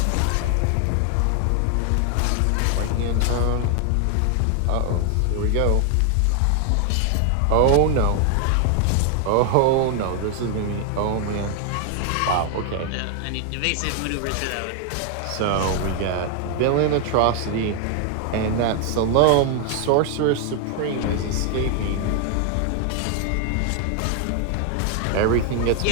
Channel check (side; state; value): both; different; correlation 0.00